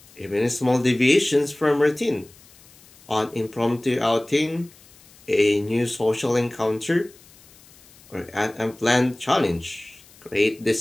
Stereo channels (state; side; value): noise; left; hiss, 26 dB below the sound